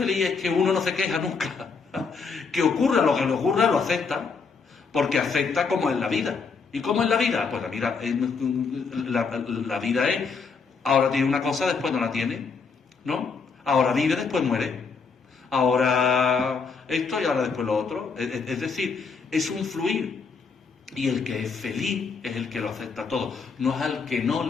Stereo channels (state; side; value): quieter; right; 5.1 dB